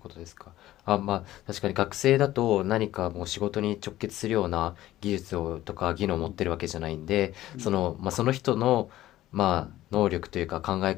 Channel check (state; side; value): quieter; right; 14.7 dB